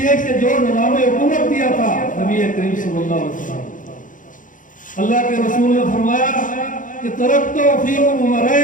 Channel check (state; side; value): late; right; 0.38 ms